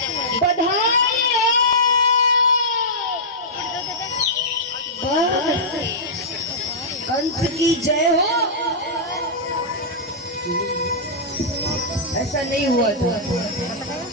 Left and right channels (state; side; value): normal; both; correlation -0.13